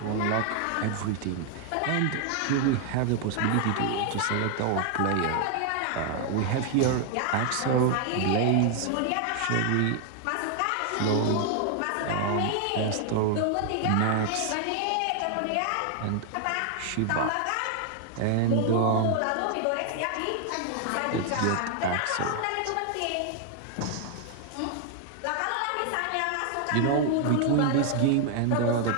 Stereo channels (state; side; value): different; both; correlation 0.00